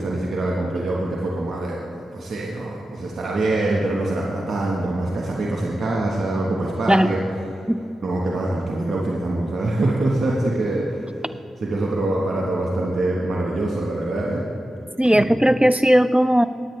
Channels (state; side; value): normal; both; correlation 0.92